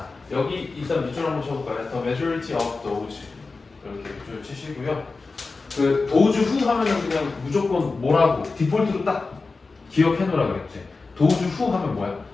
여기 일단 밑줄 한번 쳐볼까요? The majority of those 이렇게 밑줄 치시고요. 그 도주 후 하면은 그냥 무조건 뭐라고 디폴트로 딱 기억해 놓으라 그랬지. 도주 후 하면 뭐야?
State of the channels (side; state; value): right; quieter; 4.0 dB